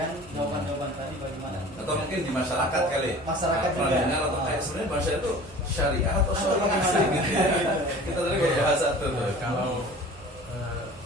jawaban-jawaban tadi bagaimana? Atau mungkin di masyarakat kali. Masyarakat juga. Dengar atau sebenarnya bahasa itu syariah atau syariah sih gitu ya. Kita tadi kok bahasa tuh. Kalau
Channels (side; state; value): right; noise; hum, 23 dB below the sound